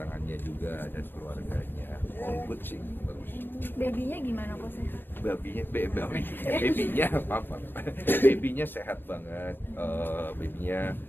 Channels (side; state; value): right; late; 0.096 ms